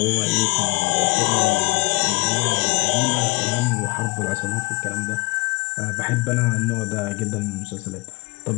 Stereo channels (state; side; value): quieter; right; 25.6 dB